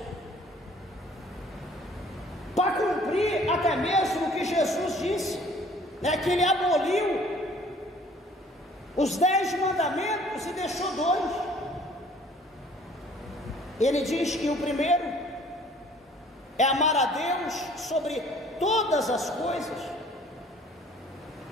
Para cumprir até mesmo o que Jesus disse, que ele aboliu os 10 mandamentos e deixou 2. Ele diz que o primeiro é amar a Deus sobre todas as coisas,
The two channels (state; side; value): normal; both; correlation 0.54